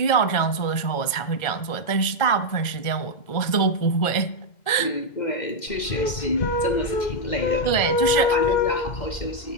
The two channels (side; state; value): right; late; 2.1 ms